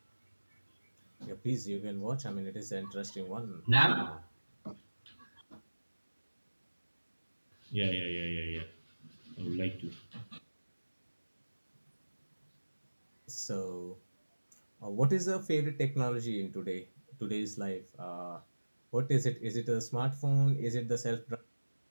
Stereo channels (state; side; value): inverted; both; correlation -1.00